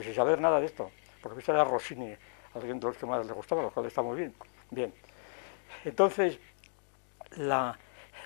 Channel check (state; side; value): silent; right; digital silence